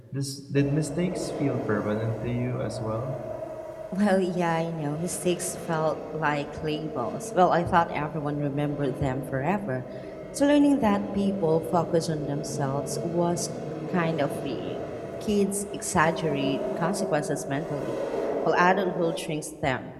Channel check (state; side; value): identical; both; correlation 1.00